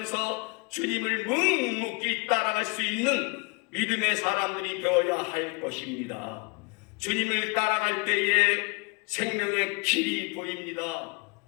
주님을 묵묵히 따라갈 수 있는 믿음의 사람들이 되어야 할 것입니다. 주님을 따라갈 때에 생명의 길이 보입니다.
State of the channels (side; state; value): right; quieter; 29.2 dB